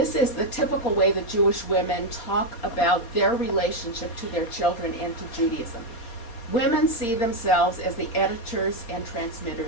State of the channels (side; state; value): right; late; 4.3 ms